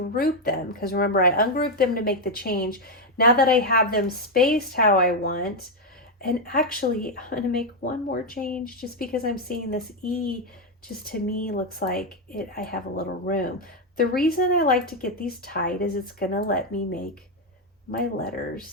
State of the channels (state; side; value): normal; both; correlation 0.04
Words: them, because remember, I ungrouped them to make the change. Now that I have them spaced how I want, and actually I'm going to make one more change just because I'm seeing this E just to me looks like I have a little room. The reason I like to get these tight is it's going to let me make my